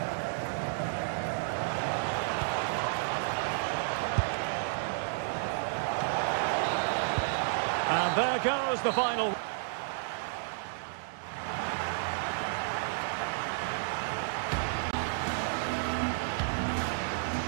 And there goes the final.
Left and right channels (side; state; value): left; silent; digital silence